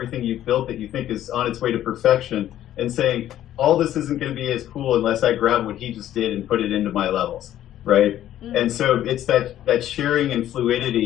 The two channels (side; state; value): right; quieter; 12.3 dB